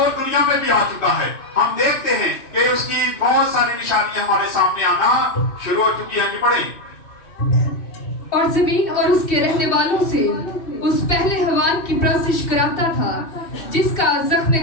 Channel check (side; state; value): right; late; 2.5 ms